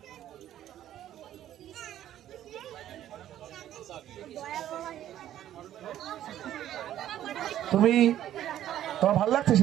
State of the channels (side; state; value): left; quieter; 12.0 dB